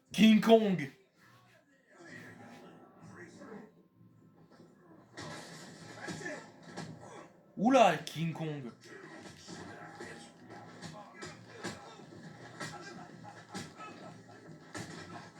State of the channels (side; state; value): both; identical; correlation 1.00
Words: King Kong! Oula, King Kong!